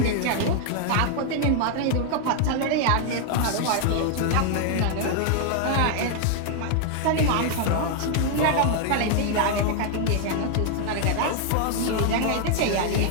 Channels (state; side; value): different; both; correlation 0.00